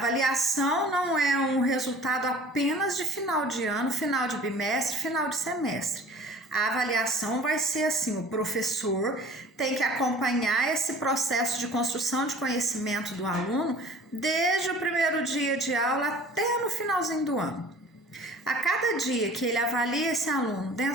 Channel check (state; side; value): normal; both; correlation 0.46